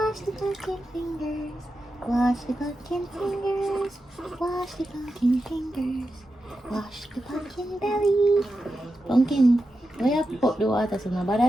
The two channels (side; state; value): both; normal; correlation 0.90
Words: the pumpkin fingers. Wash the pumpkin fingers. Wash the pumpkin fingers. Wash the pumpkin belly. Pumpkin, why you put the water so